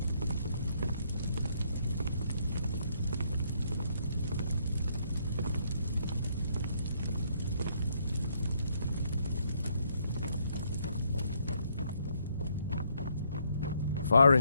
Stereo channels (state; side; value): inverted; both; correlation -0.71